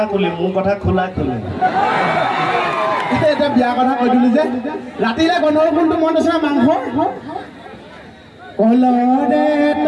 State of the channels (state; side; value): identical; both; correlation 1.00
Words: কুলি মোৰ কথা খোলা খুলি এতিয়া বিয়া কথা কৈ দিলো যে ৰাতিলে গন্ধৰ কোনটো মন আছে মাংস কলৰে